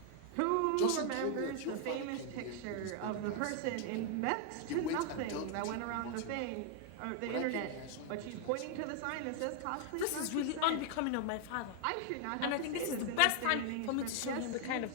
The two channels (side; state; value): both; different; correlation 0.00